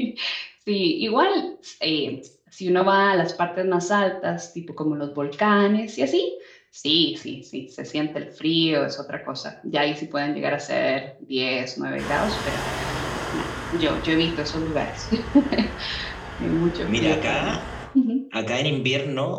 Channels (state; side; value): identical; both; correlation 1.00